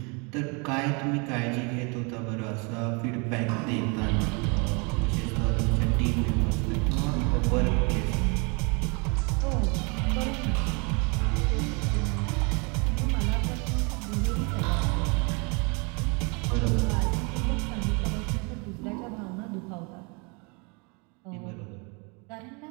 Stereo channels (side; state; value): left; quieter; 32.2 dB